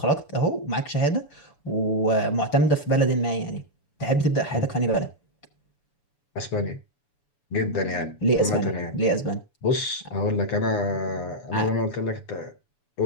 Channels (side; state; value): right; late; 7.0 ms